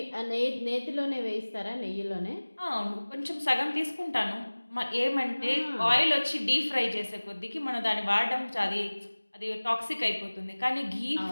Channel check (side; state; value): both; inverted; correlation -1.00